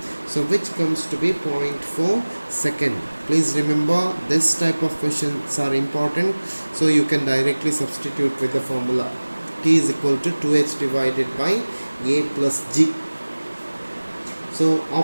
so which comes to be 0.4 second. Please remember, this type of questions are important, so you can directly substitute with the formula. T is equal to 2h divided by a plus g. So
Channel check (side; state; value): both; inverted; correlation -1.00